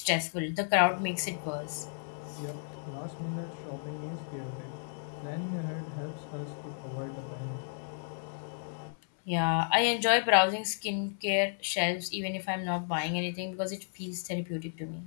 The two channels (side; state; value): right; silent; 56 dB below the other